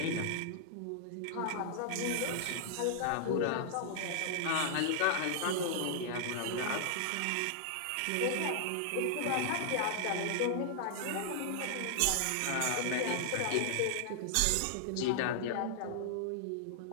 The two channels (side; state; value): both; different; correlation -0.01